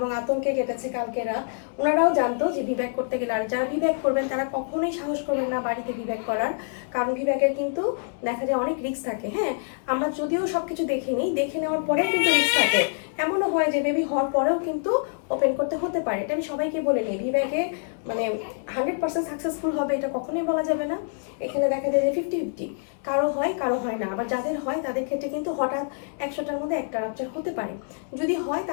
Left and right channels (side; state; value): right; silent; 61 dB below the other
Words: আতঙ্কে কেটেছে কালকেরা। ওনারাও জানতো যে ভিব্যাক করতে গেলে, আর যারা ভিব্যাক করবেন তারা কখনোই সাহস করবেন না বাড়িতে ভিব্যাক করার, কারণ ভিব্যাকের কিন্তু দেখা যায় অনেক রিস্ক থাকে। হ্যাঁ, আমরা যদিও সব কিছু দেখে নিই, দেখে নেওয়ার পরেও কিন্তু রিস্ক থাকে। এমনও হয় যে বেবি হওয়ার পরেও কিন্তু ওপেন করতে হতে পারে। এটা আমি সবাইকে বলে নিই, ভিব্যাকে মানে 100% সাকসেসফুল হবে এটা কখনোই বলা যাবে না। এখানে দেখা যায় যে 50-50, কারো হয় কারো হয় না। আবার যাদের হয় তাদের ক্ষেত্রে কিন্তু হঠাৎ 100টার মধ্যে একটা রাপচার হতে পারে। যদি হয়